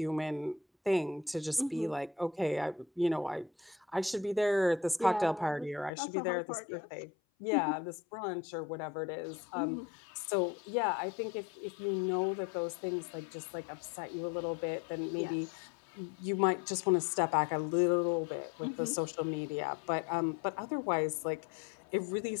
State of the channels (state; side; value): drops out; right; at 5.9 s